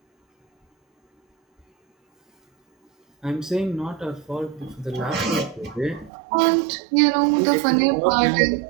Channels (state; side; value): drops out; left; at 6.1 s